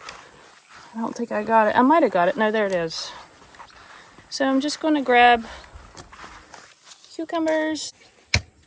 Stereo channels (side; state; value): both; identical; correlation 1.00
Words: I don't think I got it. I might have got it. No, there it is. So I'm just gonna grab cucumbers.